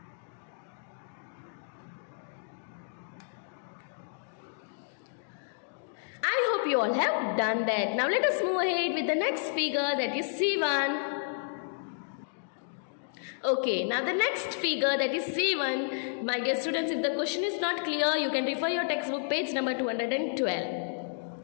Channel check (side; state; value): right; silent; digital silence